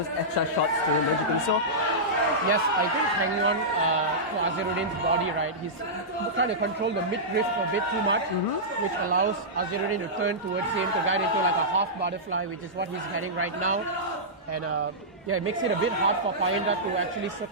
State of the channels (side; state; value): both; normal; correlation -0.13